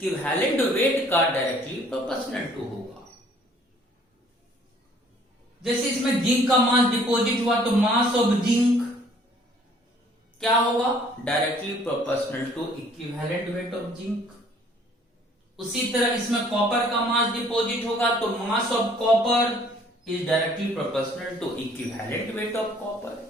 वेट का डायरेक्टली प्रोपोर्शनल टू होगा। जैसे इसमें जिंक का मास डिपॉजिट हुआ तो मास ऑफ जिंक क्या होगा? Directly proportional to equivalent weight of zinc. उसी तरह इसमें कॉपर का मास डिपॉजिट होगा तो mass of copper is directly proportional to equivalent weight of copper.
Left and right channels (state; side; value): normal; both; correlation 0.58